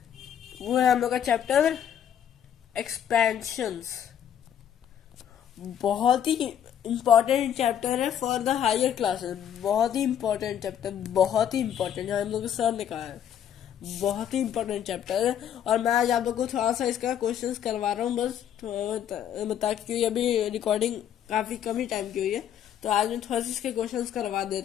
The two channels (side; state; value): right; quieter; 9.6 dB